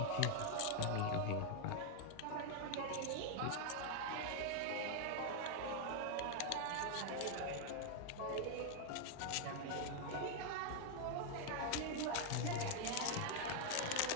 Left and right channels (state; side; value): different; both; correlation 0.00